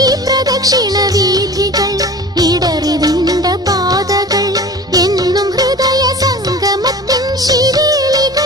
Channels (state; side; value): normal; both; correlation 0.39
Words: പ്രദക്ഷിണവീഥികൾ ഇടറിവിണ്ട പാതകൾ എന്നും ഹൃദയ സംഗമത്തിൻ